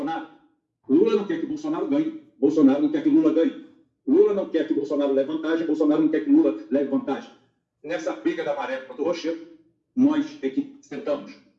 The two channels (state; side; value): identical; both; correlation 1.00